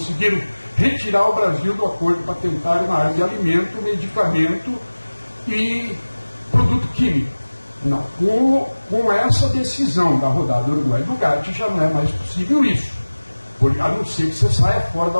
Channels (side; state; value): both; inverted; correlation -1.00